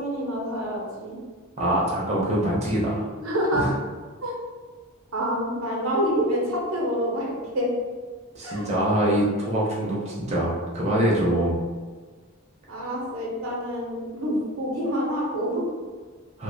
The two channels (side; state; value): both; normal; correlation 0.28